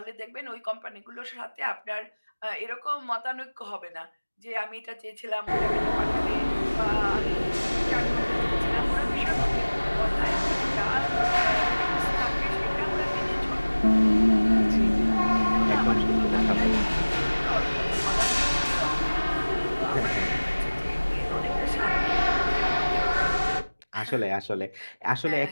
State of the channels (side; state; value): both; inverted; correlation -1.00